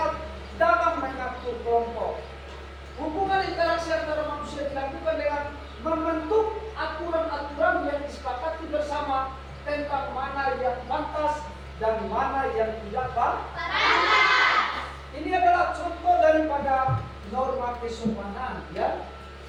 dalam mengatur kelompok. Hubungan interaksi antara manusia dilakukan dengan membentuk aturan-aturan yang disepakati bersama tentang mana yang pantas dan mana yang tidak pantas. Ini adalah contoh daripada norma kesopanan ya.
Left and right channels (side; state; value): both; identical; correlation 1.00